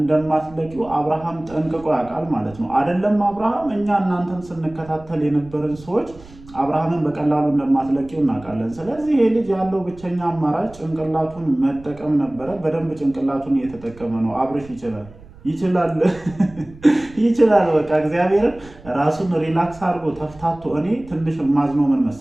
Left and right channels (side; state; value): right; noise; rumble, 21 dB below the sound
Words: አብርሃም ጠንቅቆ ያውቃል ማለት ነው። አይደለም አብርሃም፣ እኛ እናንተን ስንከታተል የነበረን ሰዎች አብርሃምን በቀላሉ እንደማትለቂው እናውቃለን። ስለዚህ ይሄ ልጅ ያለው ብቸኛ አማራጭ ጭንቅላቱን መጠቀም ነበረ። በደንብ ጭንቅላቱን እየተጠቀመ ነው። አብርሽ ይችላል ይችላል። በቃ እግዚአብሔርን ራሱን ሪላክስ አድርጎ ተፍታቶ። እኔ ትንሽ ማዝኖ ምን